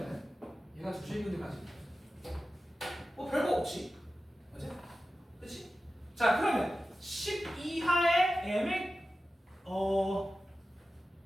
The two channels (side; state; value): both; normal; correlation 0.94